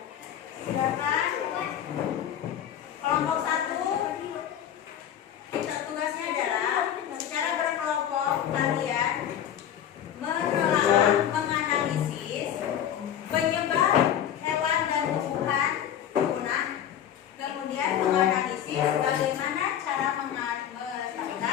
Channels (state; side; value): quieter; right; 10.0 dB